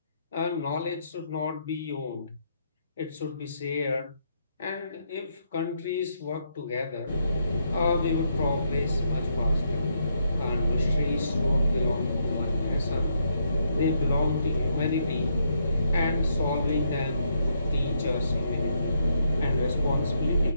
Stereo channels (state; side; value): inverted; both; correlation -0.76